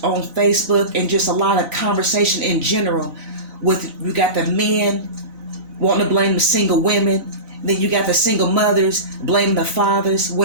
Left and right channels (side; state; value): left; late; 4.0 ms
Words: on Facebook and just a lot of conversation in general with, you got the men wanting to blame the single women, then you got the single mothers blaming the fathers,